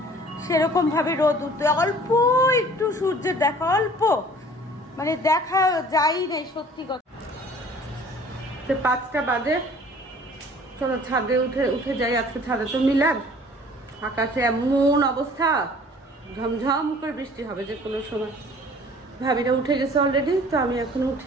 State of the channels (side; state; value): both; normal; correlation 0.50